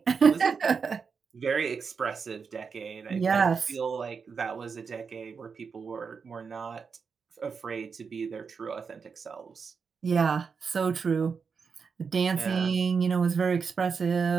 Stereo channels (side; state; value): left; quieter; 5.6 dB